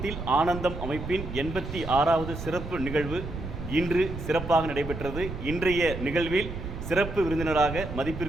ஆனந்தம் அமைப்பின் 86வது சிறப்பு நிகழ்வு இன்று சிறப்பாக நடைபெற்றது. இன்றைய நிகழ்வில் சிறப்பு விருந்தினராக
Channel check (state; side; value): noise; right; rumble, 8 dB below the sound